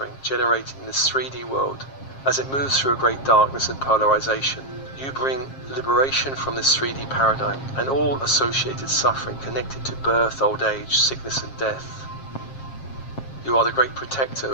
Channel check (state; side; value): late; right; 7.4 ms